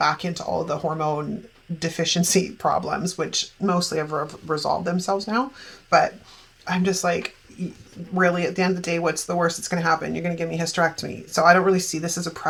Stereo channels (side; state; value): both; identical; correlation 1.00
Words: into all the hormone deficiency problems, which mostly have resolved themselves now. But I'm just like, really, at the end of the day, what's the worst that's going to happen? You're going to give me hysterectomy. So I don't really see this as a